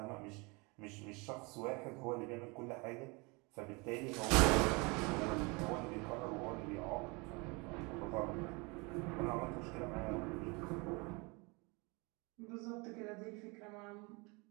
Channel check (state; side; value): quieter; left; 28.3 dB